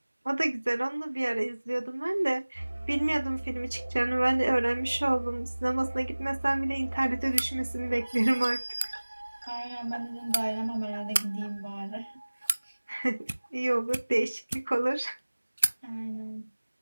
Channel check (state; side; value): inverted; both; correlation -1.00